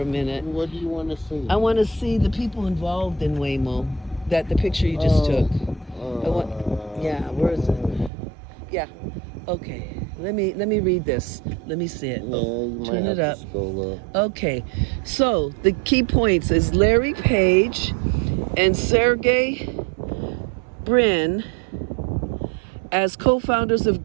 minute. What do you want to see? I want to see the people involved in Waymo. That the picture you just took. Yeah, where is it? Yeah. Okay. Let me read this. Let me see it. Turn it up. Okay. So the key points is Larry Page and Sergey Brin, as co-founders of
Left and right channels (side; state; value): left; drops out; at 8.1 s